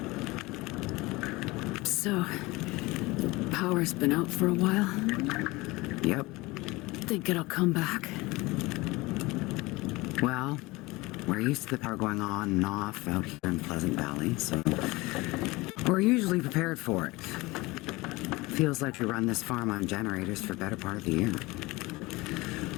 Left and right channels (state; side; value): quieter; right; 22.0 dB